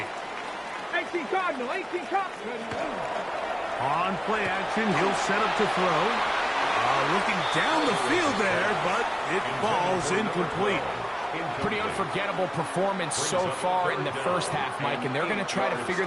18 Cardinal, 18 Cardinal. On play action, he'll set up to throw. Looking down the field there, but it falls incomplete. Pretty unforgettable performance so far in the first half, Mike, and they're going to try to figure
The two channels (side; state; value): both; identical; correlation 1.00